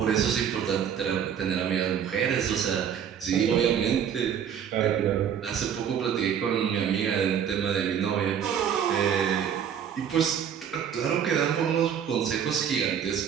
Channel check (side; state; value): left; quieter; 8.4 dB